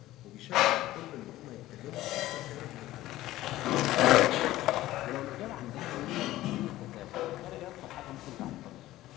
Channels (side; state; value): right; quieter; 15.7 dB